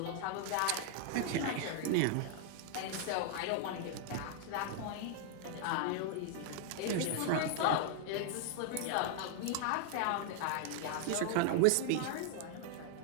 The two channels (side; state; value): both; different; correlation 0.00